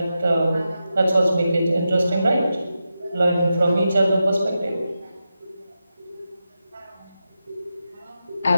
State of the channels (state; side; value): inverted; both; correlation -0.89